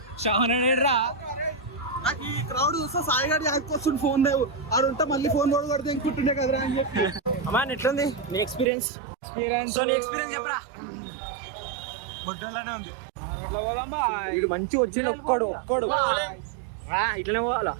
షావనరా. నాకు ఈ క్రౌడ్ చూస్తే సాయి గారి వస్తుంది ఫోన్ లేవు ఆడు ఉంటే మళ్ళీ ఫోన్ కూడా కొడితే ఇంకుంటుండే కదరా అని చెప్పి. అమ్మా ఎట్లుంది నీ ఎక్స్పీరియన్స్? సో నీ ఎక్స్పీరియన్స్ చెప్పరా. బొడ్డలానే ఉంది. ఇటు మంచి వచ్చింది ఒక్కడు ఇట్లనే పోవాలా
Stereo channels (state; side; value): drops out; left; at 8.7 s